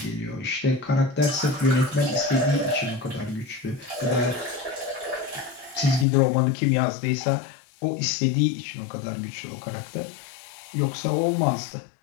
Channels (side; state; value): right; drops out; at 6.1 s